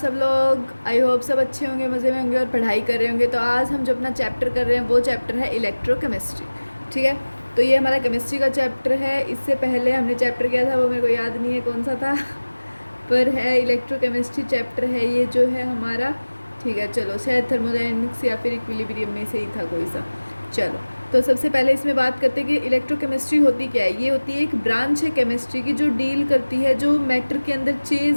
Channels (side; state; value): both; inverted; correlation -1.00